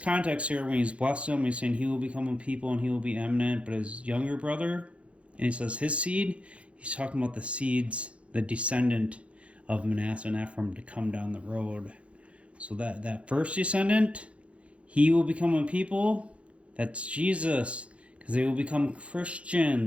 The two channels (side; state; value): left; late; 0.062 ms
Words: here, when he's blessed him, he's saying he will become a people and he will be eminent. But his younger brother, and he says his seed, he's talking about the seeds, the descendant of Manasseh and Ephraim to come down the road. So that first descendant, he will become a people. That's Jesus. Because they will become